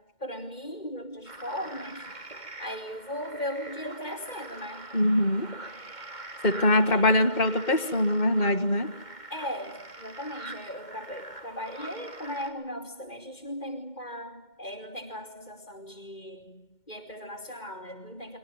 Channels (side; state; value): right; late; 2.1 ms